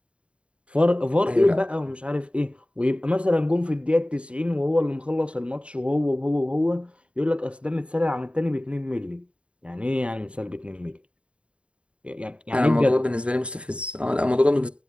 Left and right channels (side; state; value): left; late; 0.059 ms